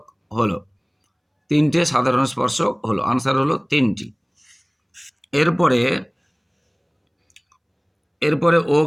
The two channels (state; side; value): identical; both; correlation 1.00